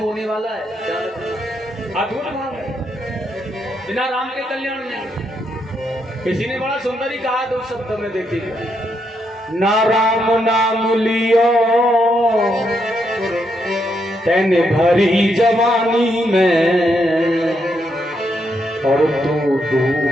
वाला है, अद्भुत भाव है, बिना राम के कल्याण नहीं। किसी ने बड़ा सुंदर ही कहा दो शब्द में, देखिए, ना राम नाम लियो तेने भरी जवानी में, और तू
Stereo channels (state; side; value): normal; both; correlation 0.79